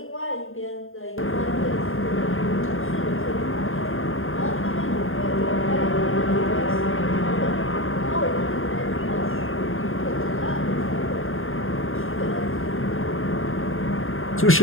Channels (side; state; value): right; late; 0.60 ms